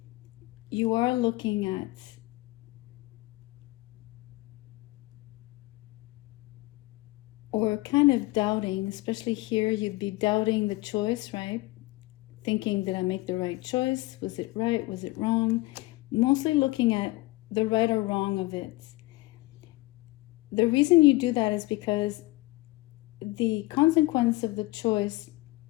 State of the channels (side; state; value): right; quieter; 21.0 dB